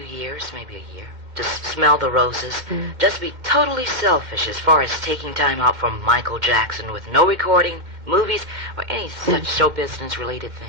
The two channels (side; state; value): left; late; 2.3 ms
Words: years, maybe a year, to smell the roses? Just be totally selfish as far as taking time out from Michael Jackson with no recording, movies, or any such show business related